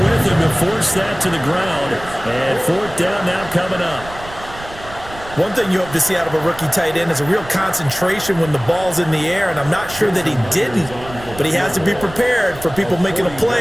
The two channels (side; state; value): right; noise; rumble, 16 dB below the sound